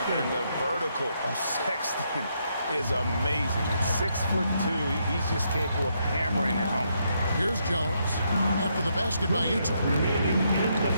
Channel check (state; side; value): inverted; both; correlation -0.77